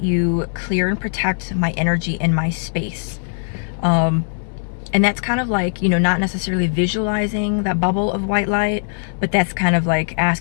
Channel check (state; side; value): silent; right; 65 dB below the other